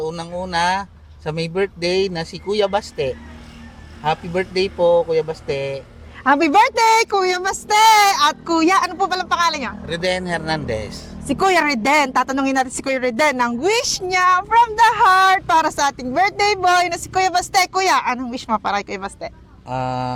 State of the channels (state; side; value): identical; both; correlation 1.00